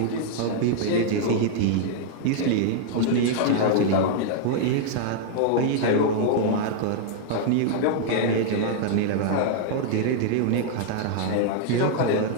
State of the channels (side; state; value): both; different; correlation -0.01